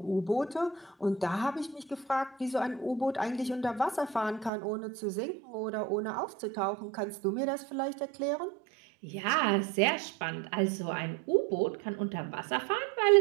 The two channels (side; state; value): left; drops out; at 4.5 s